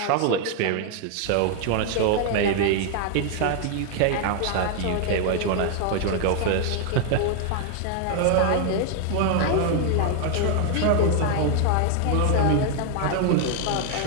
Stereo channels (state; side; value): different; both; correlation 0.00